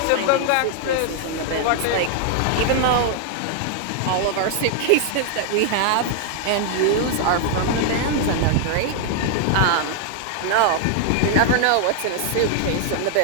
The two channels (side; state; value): both; different; correlation 0.00